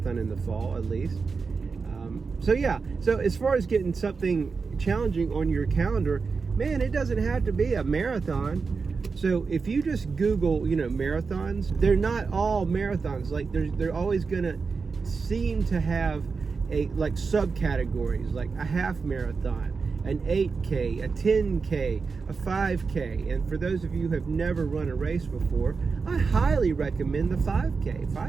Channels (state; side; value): quieter; left; 4.8 dB